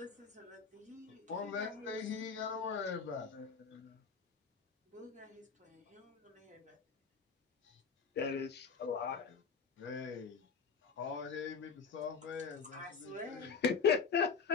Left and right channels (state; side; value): quieter; right; 5.7 dB